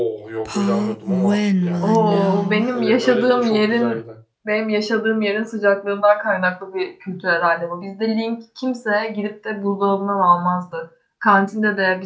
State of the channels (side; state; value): both; identical; correlation 1.00